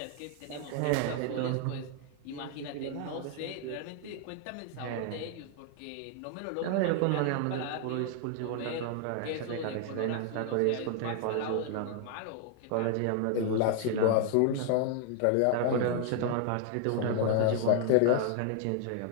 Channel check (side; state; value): both; different; correlation 0.00